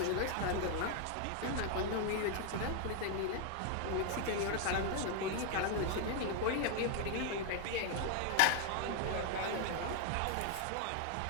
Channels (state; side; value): different; both; correlation 0.00